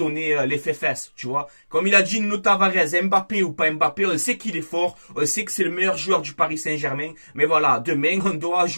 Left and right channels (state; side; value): inverted; both; correlation -1.00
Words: l'effet fesse, tu vois. Comme il a dit Nuno Tavares, Mbappé ou pas Mbappé, on sait qu'il est fort, on sait que c'est le meilleur joueur du Paris Saint-Germain. Mais voilà, demain, on doit